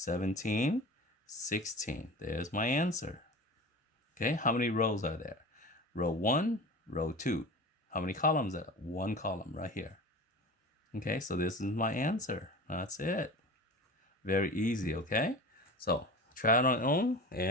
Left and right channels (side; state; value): both; normal; correlation 0.34